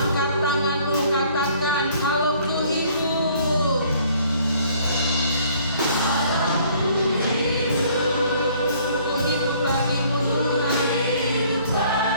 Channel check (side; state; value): both; inverted; correlation -0.59